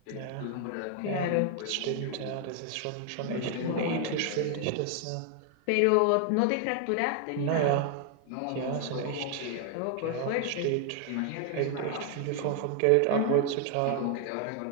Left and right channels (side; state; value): both; different; correlation 0.00